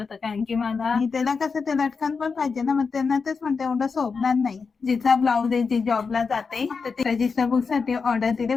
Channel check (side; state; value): right; quieter; 5.1 dB